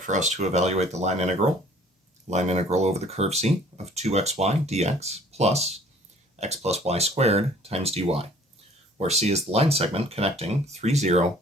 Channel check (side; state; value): both; normal; correlation 0.54